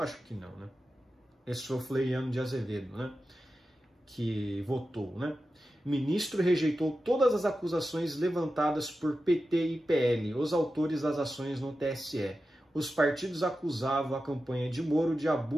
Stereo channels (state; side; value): normal; both; correlation 0.92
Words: acho que não, né? Esse foi o Floriano de Azevedo, né? Que votou, né? O ministro rejeitou todas as acusações levantadas por PT e PL, os autores das ações no TSE. Os partidos acusavam a campanha de Moro de